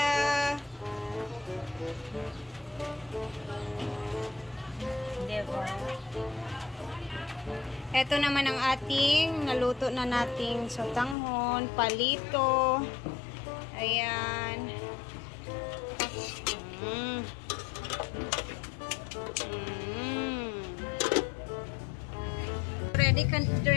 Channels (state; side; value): drops out; right; at 11.2 s